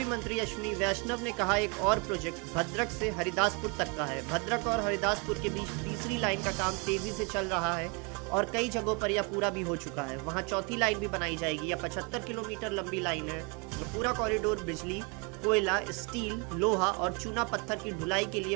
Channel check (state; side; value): quieter; left; 32.3 dB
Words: मंत्री अश्विनी वैष्णव ने कहा, एक और प्रोजेक्ट भद्रक से हरिदासपुर तक का है। भद्रक और हरिदासपुर के बीच तीसरी लाइन का काम तेजी से चल रहा है और कई जगहों पर यह पूरा भी हो चुका है। वहां चौथी लाइन भी बनाई जाएगी। यह 75 किलोमीटर लंबी लाइन है। पूरा कॉरिडोर बिजली, कोयला, स्टील, लोहा और चूना पत्थर की ढुलाई के लिए